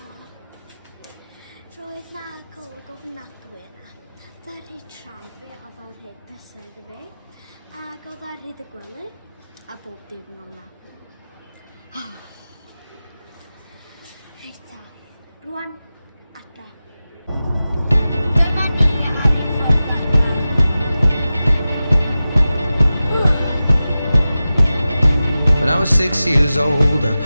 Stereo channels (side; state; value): both; inverted; correlation -0.95